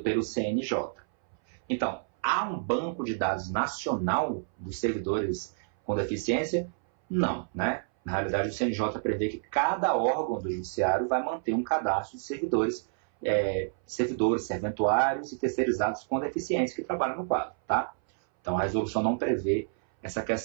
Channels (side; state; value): left; silent; 59 dB below the other